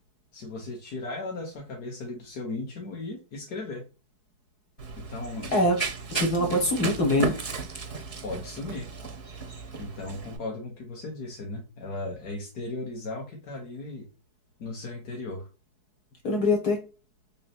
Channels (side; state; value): right; late; 4.7 ms